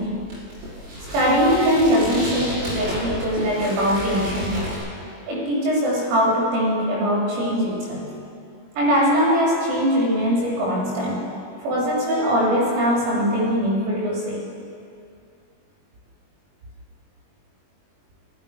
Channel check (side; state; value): left; late; 21 ms